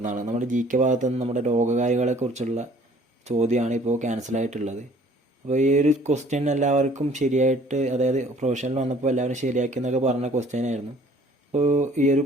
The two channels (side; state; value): both; normal; correlation 0.55